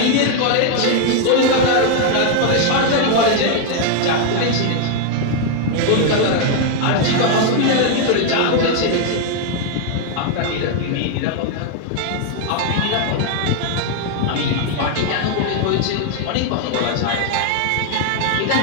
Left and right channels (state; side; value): different; both; correlation 0.00